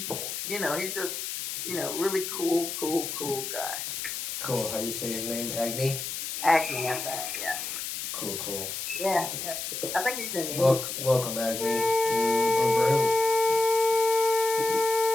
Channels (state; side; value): noise; left; hiss, 5 dB below the sound